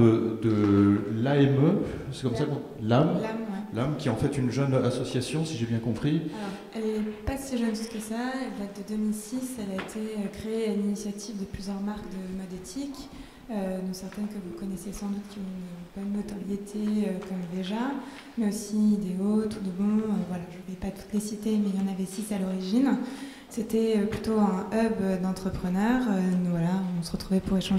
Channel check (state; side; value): identical; both; correlation 1.00